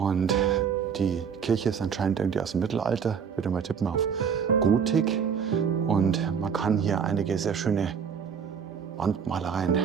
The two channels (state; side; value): quieter; left; 6.9 dB